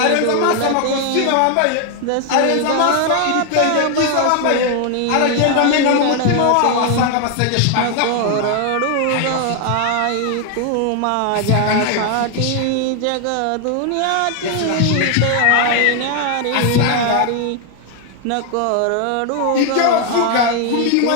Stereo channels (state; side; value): different; both; correlation 0.00